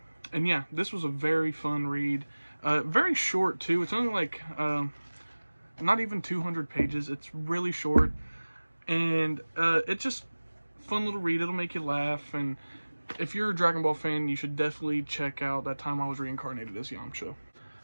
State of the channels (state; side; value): inverted; both; correlation -1.00